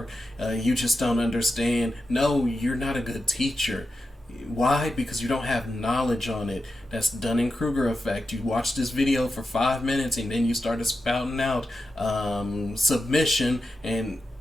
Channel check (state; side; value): normal; both; correlation 0.90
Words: you just don't understand. No, you're not a good teacher. Why? Because you don't have knowledge on it. That's Dunning-Kruger effect. You watch this video for 5 minutes, and then you started spouting out submission, and